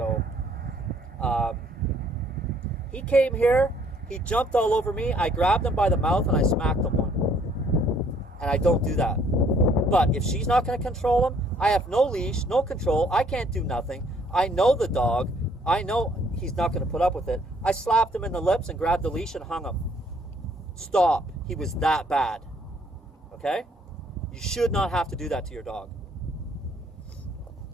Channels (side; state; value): both; normal; correlation 0.63